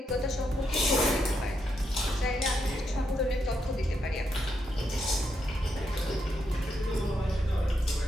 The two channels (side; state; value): both; normal; correlation 0.80